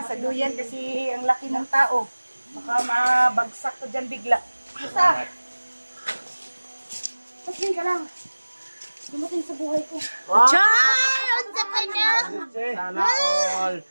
duyan kasi ang laki ng tao. Baka mabagsak ka dyan bigla. Basta! Pasing ka lang. Dumating sa buhay ko. Char! Unsa ka niya? Sana all.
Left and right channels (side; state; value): both; inverted; correlation -1.00